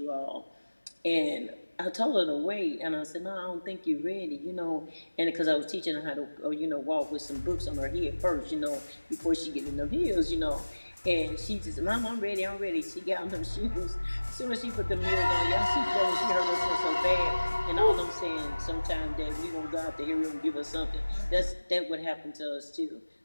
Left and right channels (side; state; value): both; inverted; correlation -1.00